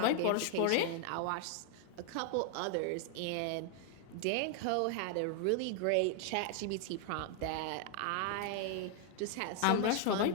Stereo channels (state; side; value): different; both; correlation 0.00